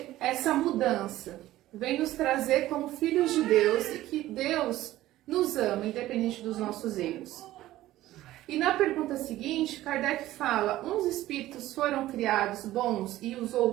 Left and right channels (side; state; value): left; quieter; 15.3 dB